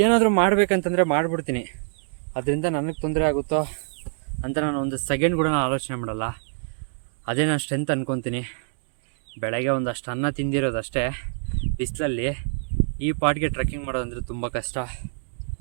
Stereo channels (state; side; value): silent; left; digital silence